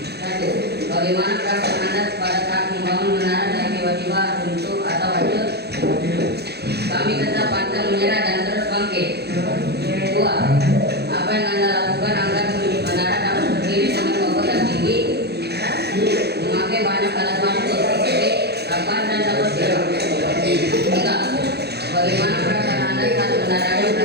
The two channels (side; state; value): left; late; 0.48 ms